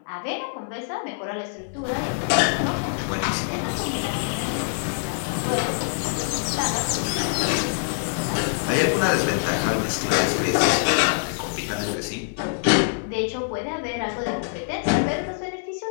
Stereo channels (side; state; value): right; silent; 60 dB below the other